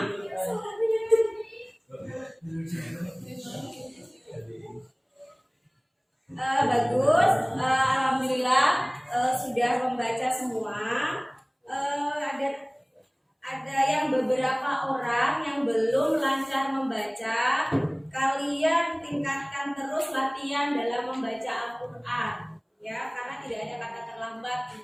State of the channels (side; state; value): both; identical; correlation 1.00